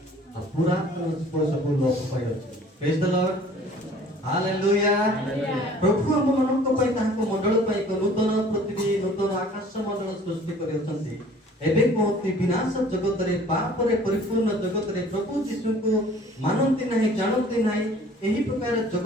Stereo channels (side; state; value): both; normal; correlation 0.51